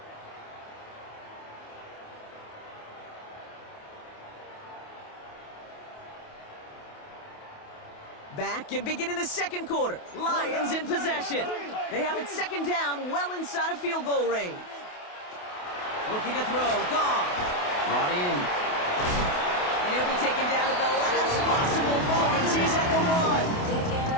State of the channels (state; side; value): late; right; 28 ms